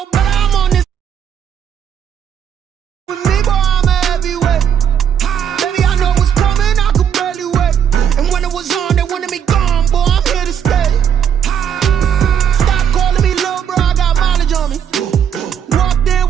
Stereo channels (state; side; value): quieter; left; 8.4 dB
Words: better, I'm on this with me, boy, I'm a heavyweight. Baby, I know what's coming, I could barely wait. And when it was on, they wanted me gone, boy, I'm here to stay. Stop calling me little bro, I got mileage on me. Walked in